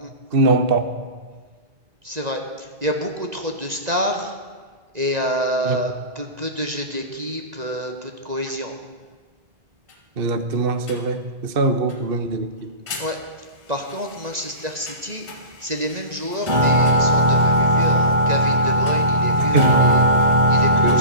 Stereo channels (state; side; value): late; left; 1.9 ms